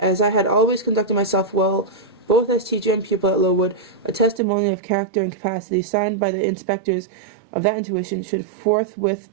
as I had always conducted myself well, both as teacher and pupil at Lowood, a testimony of character and capacity signed by the inspectors of that institution should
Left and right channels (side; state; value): left; drops out; at 4.4 s